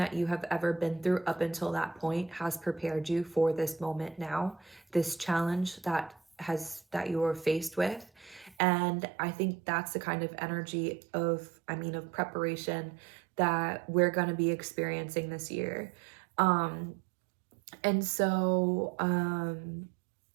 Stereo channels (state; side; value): drops out; left; at 8.6 s